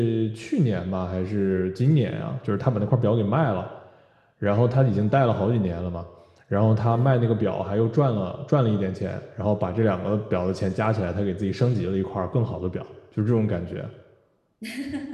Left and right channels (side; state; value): both; identical; correlation 1.00